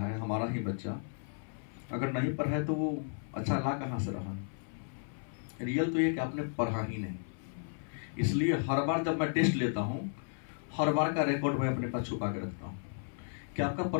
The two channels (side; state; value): right; silent; 55 dB below the other